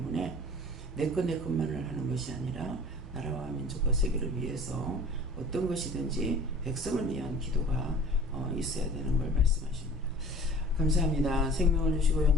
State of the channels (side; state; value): both; normal; correlation 0.44